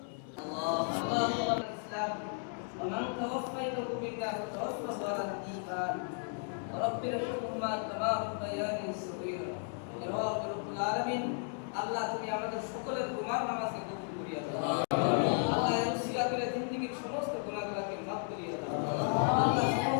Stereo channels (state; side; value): silent; right; 55 dB below the other